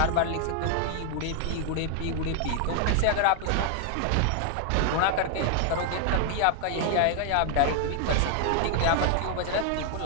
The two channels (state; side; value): different; both; correlation 0.00